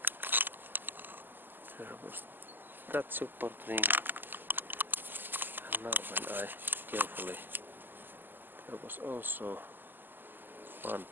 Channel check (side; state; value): left; late; 0.092 ms